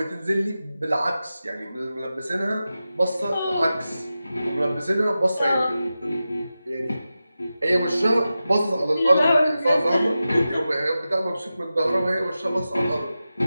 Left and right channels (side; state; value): both; inverted; correlation -0.93